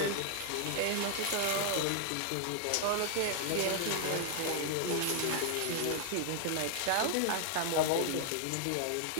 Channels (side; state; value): both; different; correlation 0.00